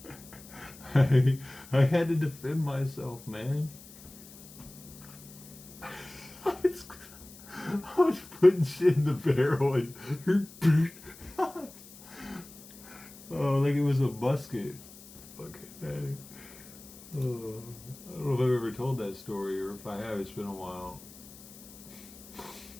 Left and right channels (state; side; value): noise; left; hiss, 19 dB below the sound